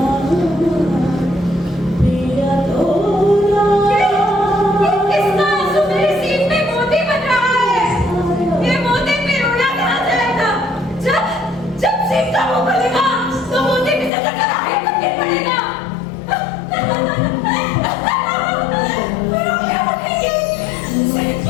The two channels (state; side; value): drops out; right; at 14.1 s